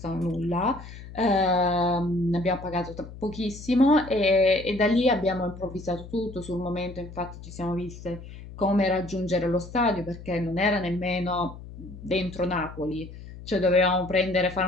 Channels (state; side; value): noise; left; hum, 14 dB below the sound